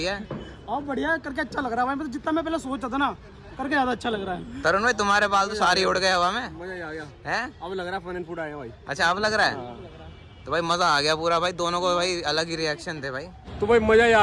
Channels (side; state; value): both; identical; correlation 1.00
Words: है। हाँ बढ़िया करके अच्छा लग रहा है भाई, जितना मैं पहले सोचता था ना करके ज्यादा अच्छा लग रहा है। तरुण भाई तुम्हारे बाल तो सारे उड़ गए हवा में। मजा आ गया हैं? अब लग रहा है फन एंड फूड आए भाई। अच्छा अब लग रहा है? तो भाई मजा आ गया पूरा भाई, दोनों को भाई अलग ही रिएक्शन थे भाई। तो भाई मजा ही